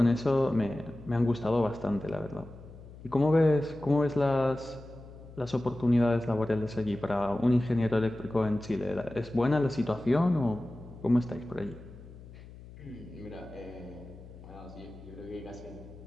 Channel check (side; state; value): left; noise; hum, 17 dB below the sound